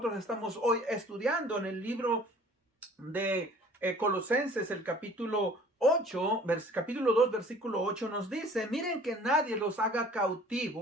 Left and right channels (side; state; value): both; normal; correlation 0.50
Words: estamos hoy estudiando en el libro de Colosenses, el capítulo 8, capítulo 2, versículo 8 nos dice: miren que nadie los haga